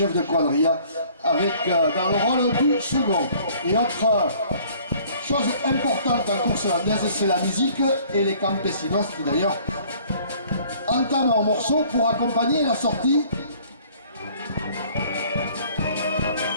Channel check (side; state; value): both; inverted; correlation -0.55